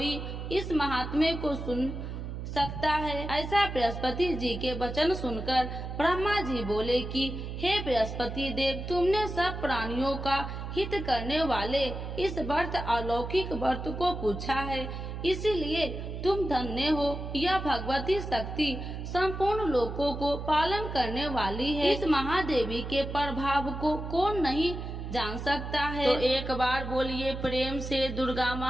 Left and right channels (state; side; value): noise; right; hum, 7 dB below the sound